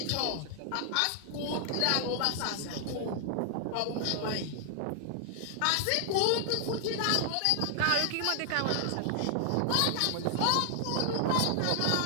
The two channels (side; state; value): both; different; correlation 0.00